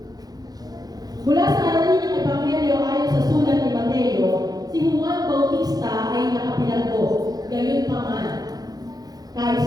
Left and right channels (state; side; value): late; left; 0.19 ms